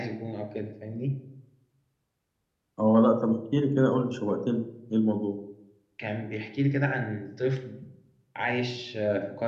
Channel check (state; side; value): identical; both; correlation 1.00